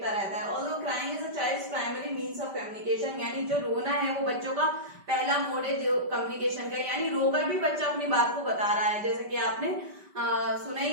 रहता है। Although crying is a child's primary means of communication, यानी जो रोना है वो बच्चों का पहला मोड है जो कम्युनिकेशन का, यानी रोकर भी बच्चा अपनी बात को बता रहा है। जैसे कि आपने सुना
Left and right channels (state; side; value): late; left; 5.1 ms